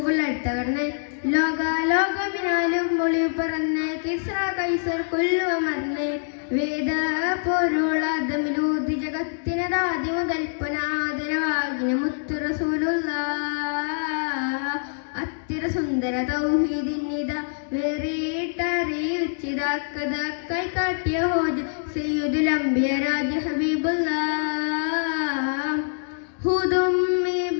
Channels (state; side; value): silent; right; digital silence